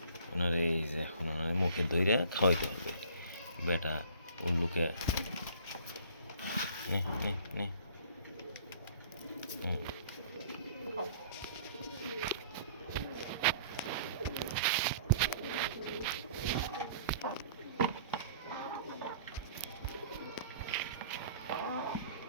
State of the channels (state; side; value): inverted; both; correlation -0.51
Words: ওনার এই যে এখন ওনার মুখে ধইরে খাওয়াইতে হবে। বেটা উল্লুকে নে নে নে।